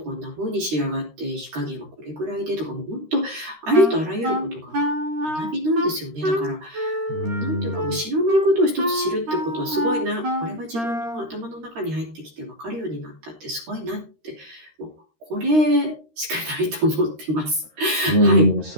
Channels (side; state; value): left; late; 13 ms